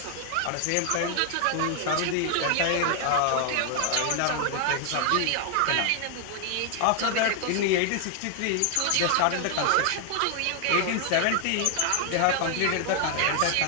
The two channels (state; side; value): different; both; correlation 0.00